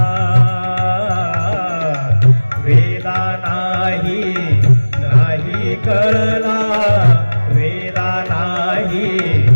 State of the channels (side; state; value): both; inverted; correlation -1.00